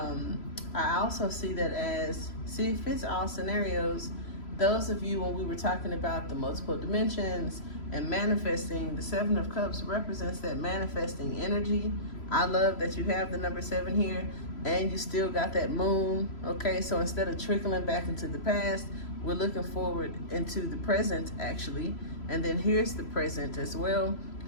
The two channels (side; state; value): right; late; 3.0 ms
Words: also see that as, see, it fits all scenarios. Those of you, when we were talking about the multiple dimensions and manifesting, the 7 of Cups represents that manifesting energy. I love that you have the number 7 here and you still got that moon, okay? So instead of trickling back into the past, we're looking forward into the present, actually. And then here's the present as well